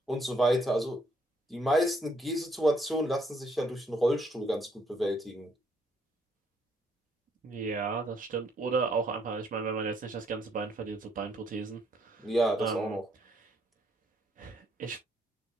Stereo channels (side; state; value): both; normal; correlation 0.70